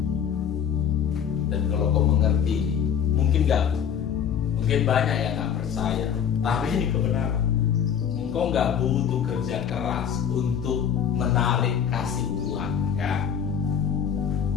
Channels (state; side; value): quieter; right; 8.1 dB